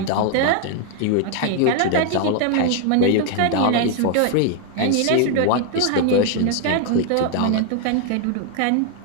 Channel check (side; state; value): both; different; correlation 0.00